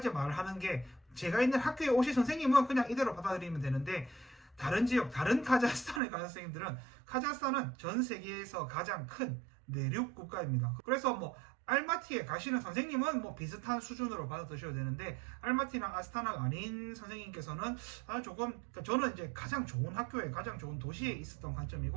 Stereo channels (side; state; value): left; drops out; at 6.0 s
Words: 말하는 게 제가 있는 학교에 오실 선생님은 그냥 이대로 받아들이면 되는데 다른 지역, 다른 카자흐스탄에 가는 선생님들은 카자흐스탄은 전 세계에서 가장 큰 내륙 국가입니다. 그래서 뭐 알마티에 가시는 선생님은 뭐 비슷한 수준으로 받아드셔야 되는데 알마티나 아스타나가 아닌 선생님께서는 조금 그러니까 저는 이제 가장 좋은 학교에 가장 좋은 도시에 있었던